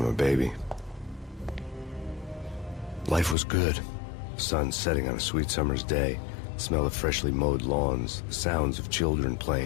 a baby. Life was good. Sun setting on a sweet summer's day. The smell of freshly mowed lawns. The sounds of children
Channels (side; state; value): right; drops out; at 3.4 s